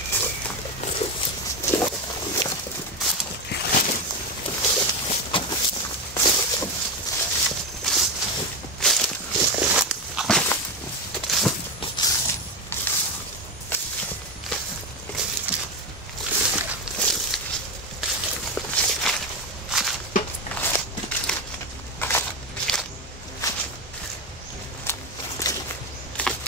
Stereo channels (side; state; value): both; normal; correlation 0.14